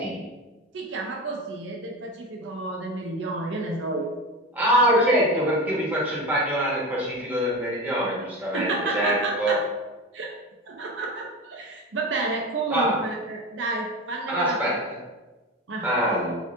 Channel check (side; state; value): both; normal; correlation 0.25